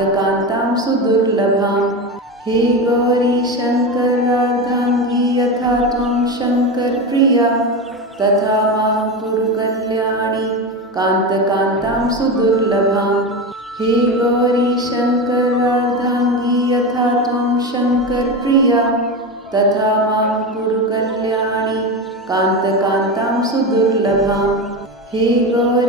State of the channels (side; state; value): both; normal; correlation 0.20